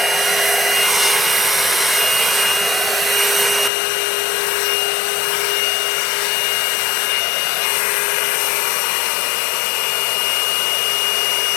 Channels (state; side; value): drops out; right; at 3.7 s